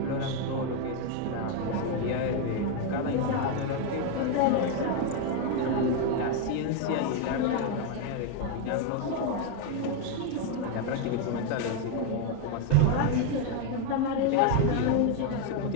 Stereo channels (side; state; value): both; different; correlation 0.01